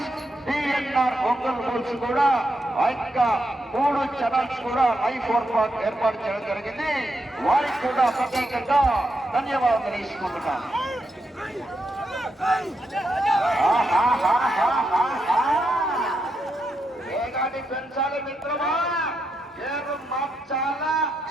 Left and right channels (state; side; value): normal; both; correlation 0.83